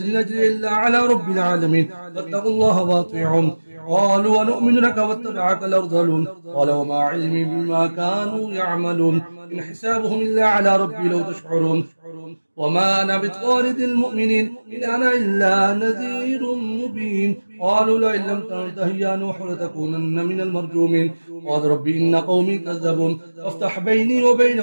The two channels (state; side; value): inverted; both; correlation -1.00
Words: نجري إلا على رب العالمين فاتقوا الله واطيعون. قالوا ونؤمن لك واتبعك الأرذلون قال وما علمي بما كانوا يعملون إن حسابهم إلا على ربي لو تشعرون وما أنا بطارد المؤمنين إن أنا إلا نذير مبين. قالوا لئن لم تنته يا نوح لتكونن من المرجومين قال ربي إن قومي كذبون فافتح بيني